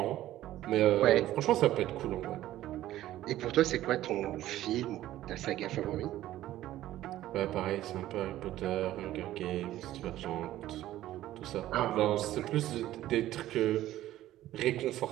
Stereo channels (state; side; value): quieter; left; 14.1 dB